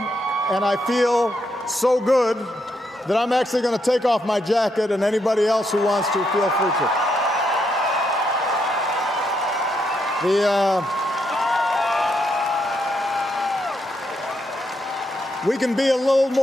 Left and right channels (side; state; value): both; normal; correlation 0.79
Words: and I feel so good that I'm actually going to take off my jacket, and anybody else who wants to, feel free to. We can be a little